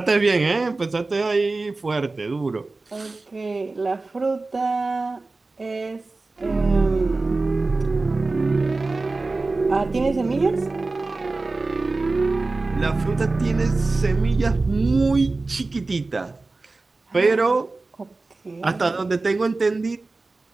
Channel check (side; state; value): left; quieter; 3.5 dB